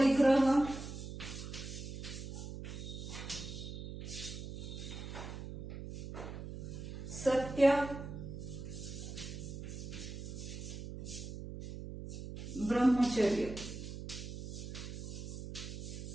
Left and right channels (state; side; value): noise; right; hum, 8 dB below the sound